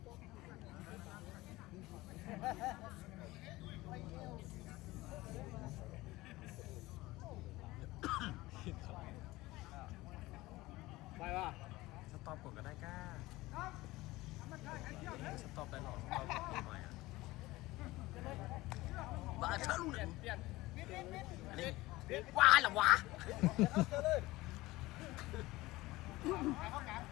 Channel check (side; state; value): right; quieter; 19.3 dB